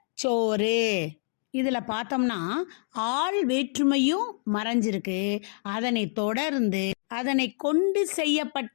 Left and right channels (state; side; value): silent; right; digital silence